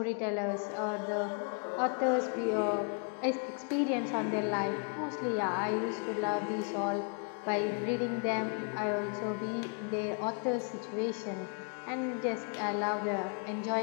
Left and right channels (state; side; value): quieter; right; 39.0 dB